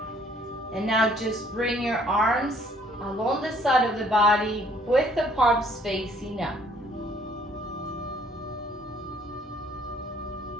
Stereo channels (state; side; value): normal; both; correlation 0.61